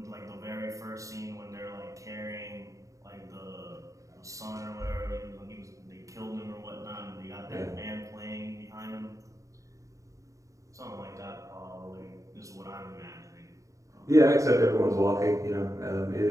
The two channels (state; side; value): late; left; 0.16 ms